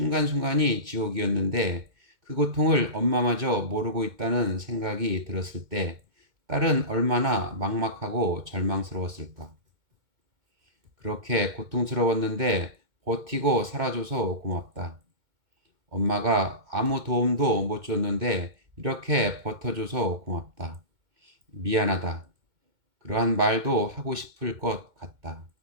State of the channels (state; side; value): late; left; 2.1 ms